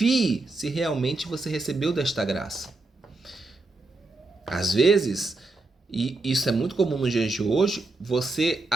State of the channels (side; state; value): left; quieter; 3.2 dB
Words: se realmente você recebeu desta graça. Às vezes, e isso é muito comum nos dias de hoje, você